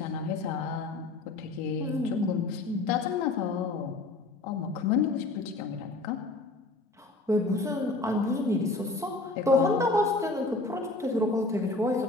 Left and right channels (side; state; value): right; quieter; 3.1 dB